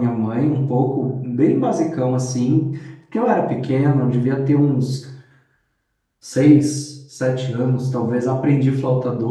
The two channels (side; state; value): both; identical; correlation 1.00